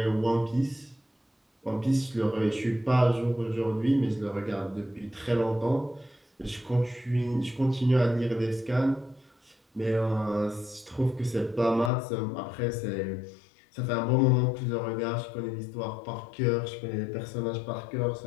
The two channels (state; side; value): drops out; right; at 11.9 s